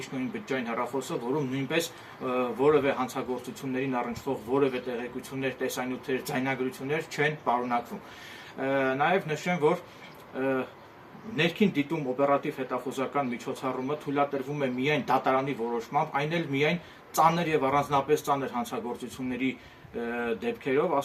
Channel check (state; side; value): identical; both; correlation 1.00